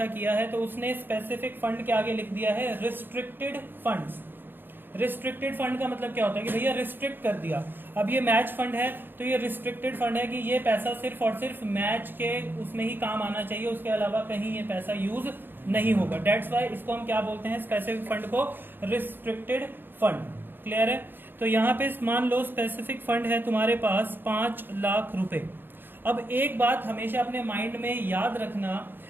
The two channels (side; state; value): left; late; 0.097 ms